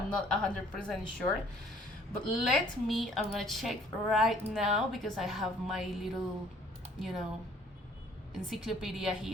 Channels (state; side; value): normal; both; correlation 0.58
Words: not 100% sure, but I'm gonna check right now, because I have my little encyclopedia